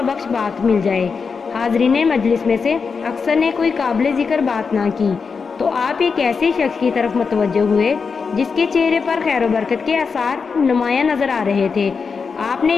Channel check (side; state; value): right; quieter; 5.3 dB